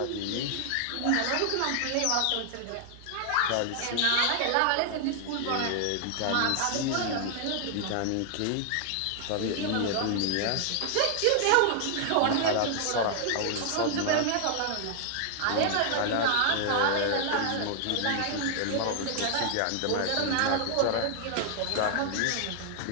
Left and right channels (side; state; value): both; different; correlation 0.00